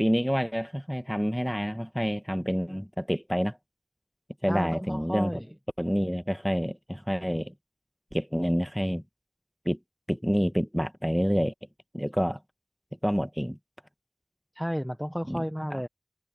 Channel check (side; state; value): both; identical; correlation 1.00